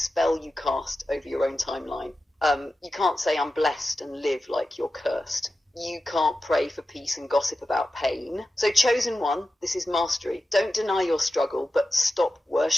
you cast over your own timeline. You can't say I'm blessed and live like you're cursed. You can't pray for peace and gossip about pain. So chosen one, this is mastery. Don't deny your struggle, but stop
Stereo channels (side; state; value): both; normal; correlation 0.93